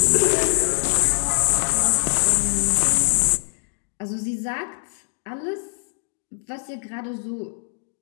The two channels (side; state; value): right; silent; digital silence